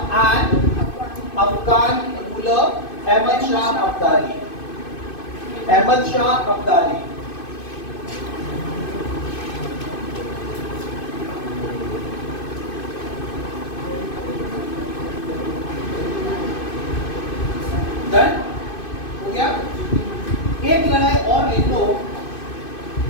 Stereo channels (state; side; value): late; right; 2.5 ms